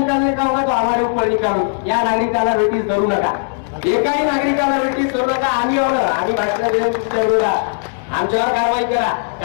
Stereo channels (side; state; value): right; silent; digital silence